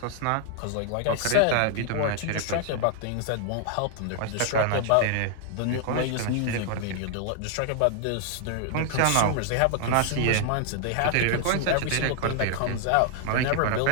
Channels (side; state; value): both; different; correlation 0.00